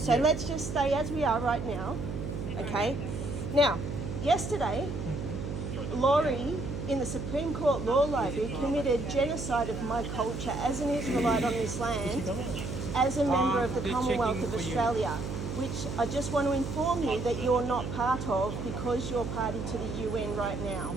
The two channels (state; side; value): noise; right; hum, 5 dB below the sound